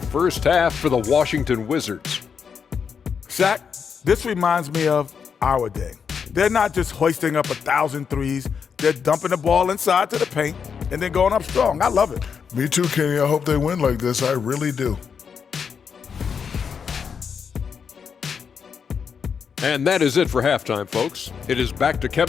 first half for the Washington Wizards. Shaq, this reminds me of our day. They're not just hoisting up 1,000 threes. They're dumping the ball inside to the paint and then going up strong. I love it. Me too, Kenny. I hope they win like this. I really do. And that is it for halftime, folks. It is back to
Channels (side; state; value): right; quieter; 6.5 dB